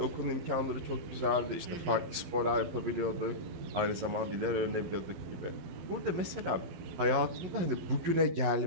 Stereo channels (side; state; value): left; late; 11 ms